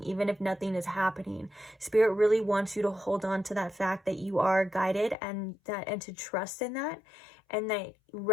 even if nothing is happening. Spirit really wants you to hold on to that fact that you are guided, and to trust in that, and that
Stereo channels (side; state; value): right; drops out; at 5.2 s